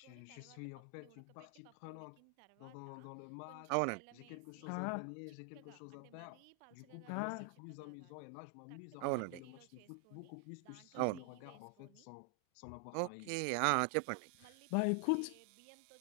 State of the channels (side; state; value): both; different; correlation 0.00